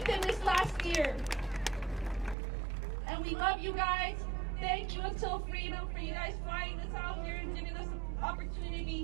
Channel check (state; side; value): drops out; left; at 2.4 s